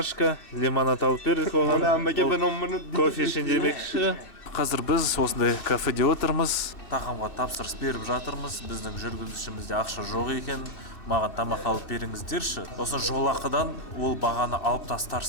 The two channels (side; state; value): right; late; 2.6 ms